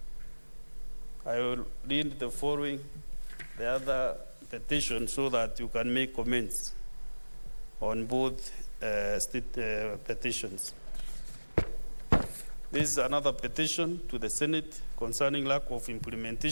I will read the following, the other petition, so that you can make comments on both petitions. This is another petition to the Senate concerning lack of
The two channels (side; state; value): both; inverted; correlation -1.00